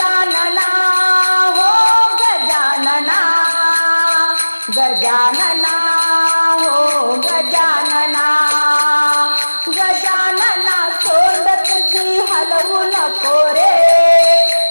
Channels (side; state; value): both; inverted; correlation -1.00